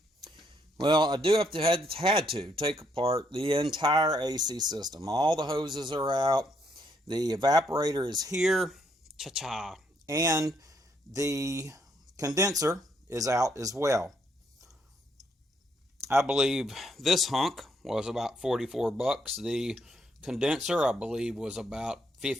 Well, I do have to had to take apart the entire AC system. All the hoses are out. The evaporator is here. Cha-cha. And the condenser is out as well. I believe this hunk was about 44 bucks. The condenser, I believe, was about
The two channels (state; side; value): normal; both; correlation 0.73